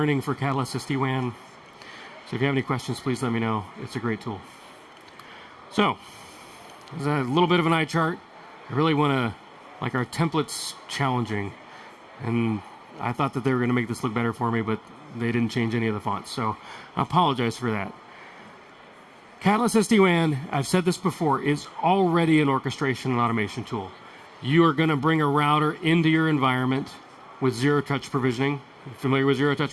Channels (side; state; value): both; identical; correlation 1.00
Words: for Catalyst SD-WAN. So if you have any questions, please let me know. It's a great tool. So, there's a little bit of an eye chart. I really want to, like, our template's challenging. And I thought that they were going to make this look better for me, but they didn't change any of the fonts. So I apologize for that. Catalyst SD-WAN, I've said this before, is already an orchestration and automation tool. You are going to bring a router into your environment with zero-touch provisioning. Familiar with